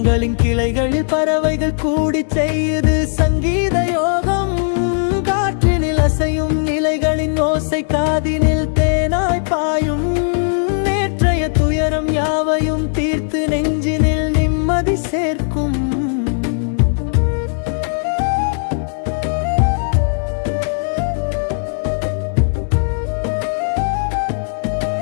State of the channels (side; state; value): right; silent; digital silence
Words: கிளைகளில் பறவைகள் கூடி செய்யுது சங்கீத யோகம். காற்றினில் அசையும் நிலைகளின் ஓசை காதினில் தேனாய் பாயும். நேற்றைய துயரம் யாவையும் தீர்த்து நெஞ்சினில் நிம்மதி சேர்க்கும்.